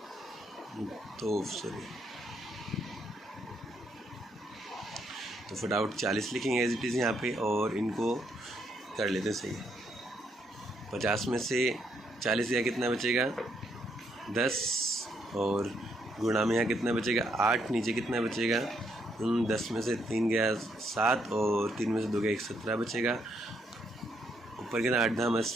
तो सॉरी, तो फटाफट 40 लिखेंगे एज इट इज़ यहाँ पे, और इनको कर लेते हैं सही। 50 में से 40 या कितना बचेगा 10, और गुणा में यहाँ कितना बचेगा 8, नीचे कितना बचेगा 10 में से 3 गया 7, और 3 में से 2 गया 17 बचेगा। ऊपर कितना 8 धाम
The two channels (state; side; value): normal; both; correlation 0.75